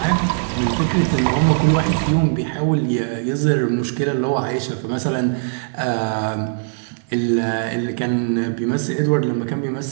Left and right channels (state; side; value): silent; left; 58 dB below the other